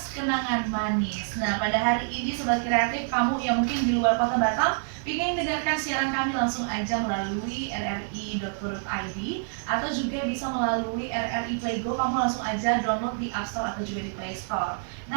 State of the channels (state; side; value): silent; left; 60 dB below the other